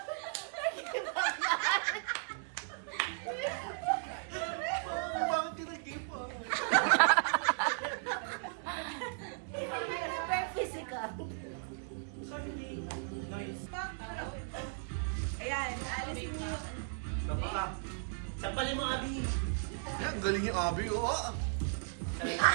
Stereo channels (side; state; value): left; silent; digital silence